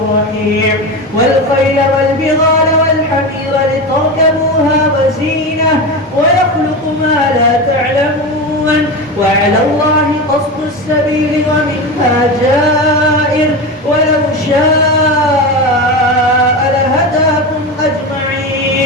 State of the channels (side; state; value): both; normal; correlation 0.22